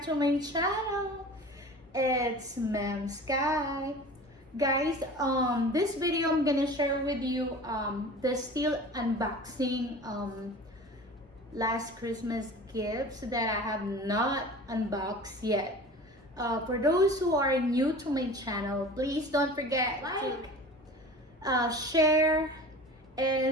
to my channel. It's MEMSKY. Guys, this video I'm gonna share with you the still unboxing last Christmas gifts that I have not unboxed yet. For those who are new to my channel, please don't forget to share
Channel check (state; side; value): normal; both; correlation 0.39